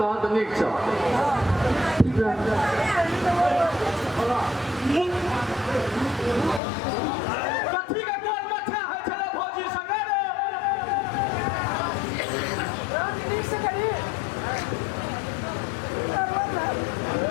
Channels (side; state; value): right; drops out; at 6.6 s